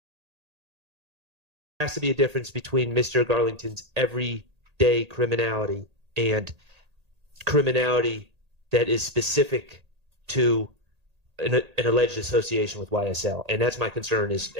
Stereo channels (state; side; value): late; left; 1.8 ms